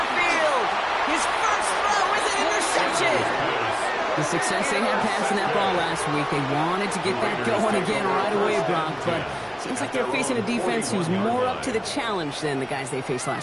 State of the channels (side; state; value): both; identical; correlation 1.00